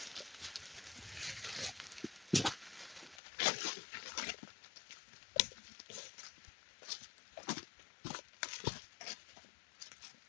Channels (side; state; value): right; drops out; at 3.2 s